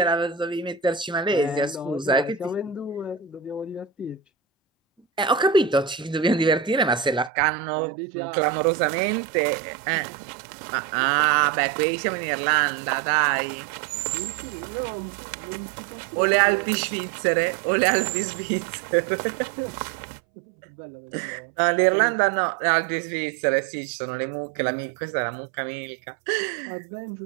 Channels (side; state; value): left; drops out; at 7.3 s